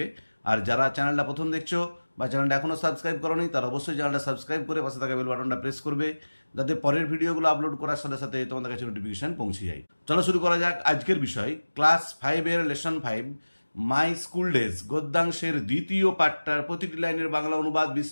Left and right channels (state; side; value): inverted; both; correlation -1.00